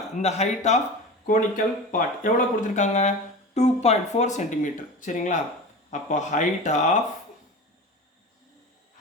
இந்த ஹைட் ஆஃப் கோனிக்கல் பார்ட் எவ்வளோ கொடுத்துருக்காங்க, 2.4 சென்டிமீட்டர். சரிங்களா? அப்போ ஹைட் ஆஃப்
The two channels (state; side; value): normal; both; correlation 0.31